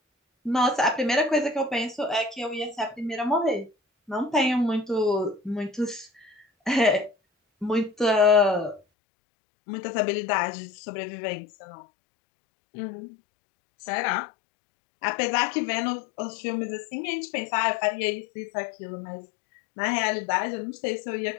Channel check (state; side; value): drops out; right; at 8.8 s